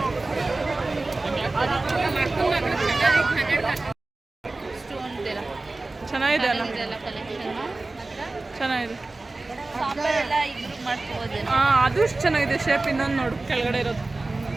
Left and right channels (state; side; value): quieter; left; 3.2 dB